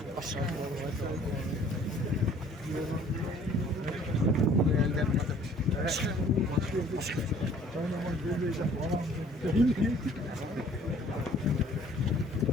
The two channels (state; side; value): normal; both; correlation 0.55